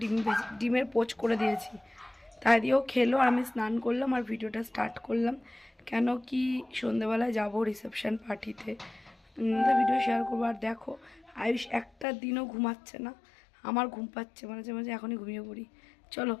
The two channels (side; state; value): right; drops out; at 12.1 s